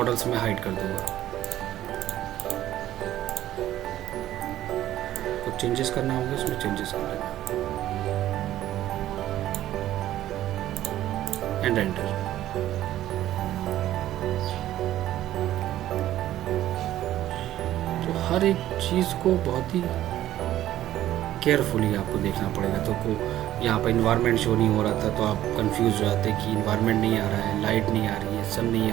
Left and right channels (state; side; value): quieter; left; 13.3 dB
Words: में हाइड कर दूँगा। चेंजेस करना होंगे उसमें चेंजेस कर लेना एंड एंटर। तो हर एक चीज़ को बहुत ही केयरफुली आपको देखना पड़ेगा। तो को यहाँ पर इन्वायरमेंट शो नहीं हो रहा था तो आप कंफ्यूज हो जाते कि इन्वायरमेंट नहीं आ रहा है, लाइट नहीं आ रही है, सन नहीं